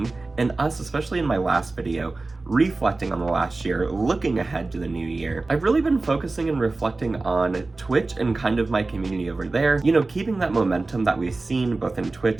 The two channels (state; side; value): quieter; left; 3.4 dB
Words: and us, especially in my last video, reflecting on the last year, looking ahead to the new year, I've really been focusing and reflecting on Twitch and kind of my community over there, keeping that momentum that we've seen both in